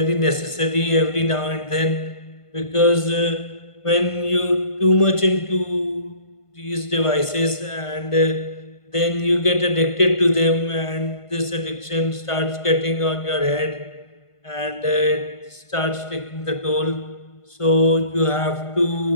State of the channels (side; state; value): right; late; 1.5 ms